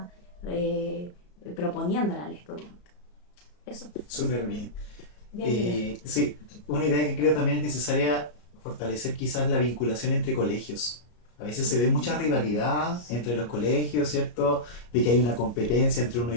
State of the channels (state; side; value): late; right; 33 ms